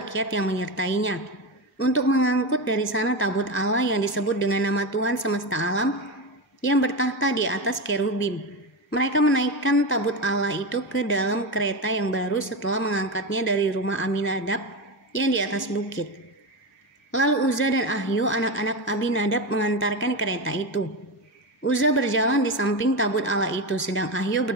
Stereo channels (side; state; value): both; normal; correlation 0.17